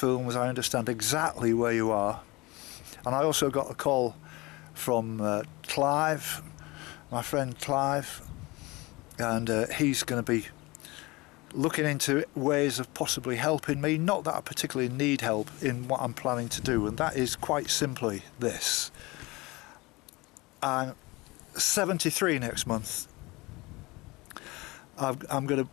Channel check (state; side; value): quieter; right; 23.0 dB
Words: I understand exactly where you are. And I also got a call from Clive, my friend Clive, and he's going to be looking into ways of possibly helping me. Not that I particularly need help in what I'm planning to do, and that is quite simply this. I'm 73 next month. I'm going to